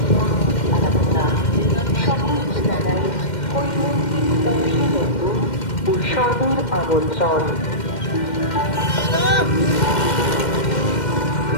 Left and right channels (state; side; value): late; right; 2.1 ms